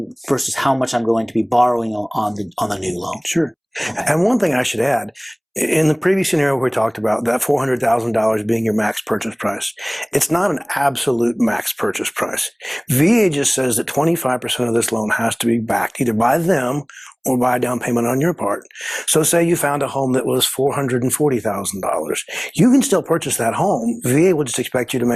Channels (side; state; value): both; identical; correlation 1.00